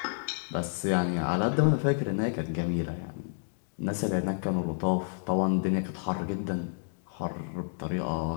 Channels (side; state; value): right; silent; digital silence